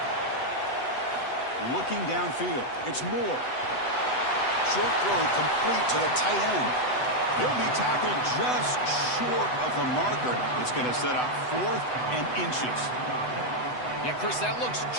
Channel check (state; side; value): late; right; 8.0 ms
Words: Looking downfield. It's Moore. Short throw complete to the tight end. He'll be tackled just short of the marker. It's going to set up 4th and inches. Yeah, Chris, that looks